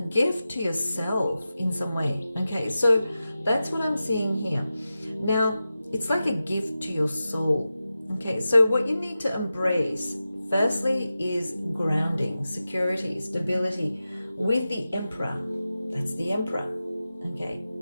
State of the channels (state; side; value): inverted; both; correlation -0.93